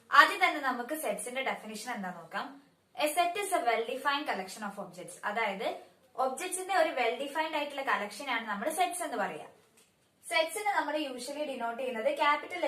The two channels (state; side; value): identical; both; correlation 1.00